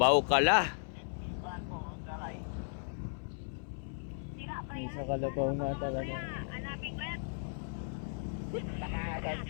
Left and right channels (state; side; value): silent; right; 54 dB below the other